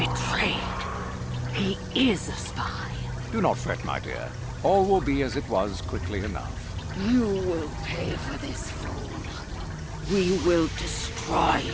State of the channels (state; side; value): identical; both; correlation 1.00